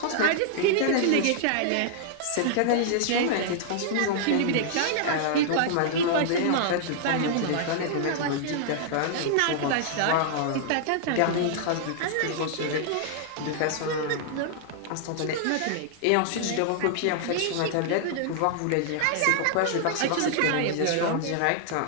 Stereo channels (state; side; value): different; both; correlation -0.01